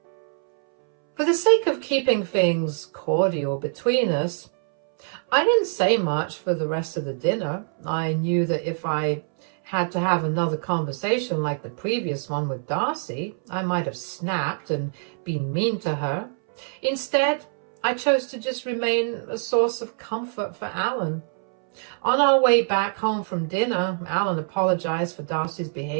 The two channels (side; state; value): left; silent; 62 dB below the other